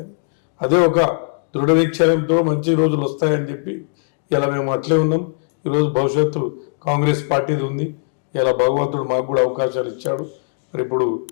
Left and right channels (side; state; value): right; silent; digital silence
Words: అదే ఒక దృఢ నిశ్చయంతో మంచి రోజులు వస్తాయని చెప్పి ఇలా మేము అట్లే ఉన్నాం. ఈరోజు భవిష్యత్తు కాంగ్రెస్ పార్టీది ఉంది. ఇలా భగవంతుడు మాకు కూడా అవకాశాలు ఇచ్చాడు. మరి ఇప్పుడు